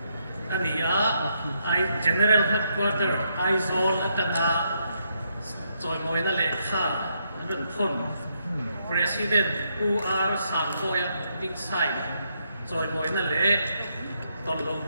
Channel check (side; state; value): both; inverted; correlation -0.77